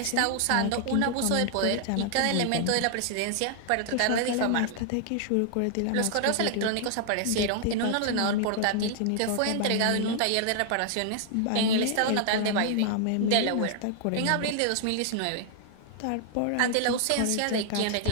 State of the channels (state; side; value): different; both; correlation 0.00